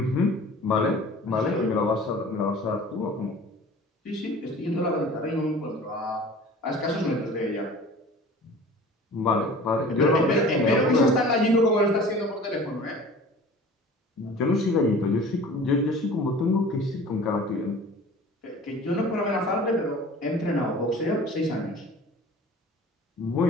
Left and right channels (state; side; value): normal; both; correlation 0.43